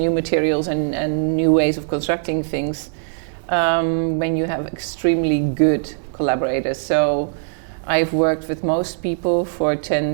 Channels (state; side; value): silent; left; digital silence